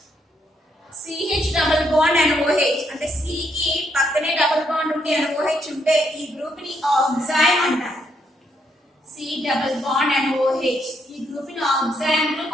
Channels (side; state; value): both; normal; correlation 0.75